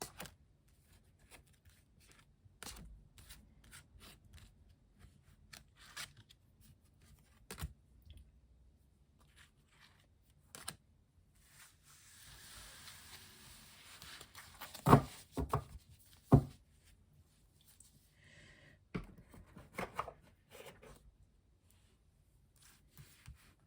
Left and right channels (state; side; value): identical; both; correlation 1.00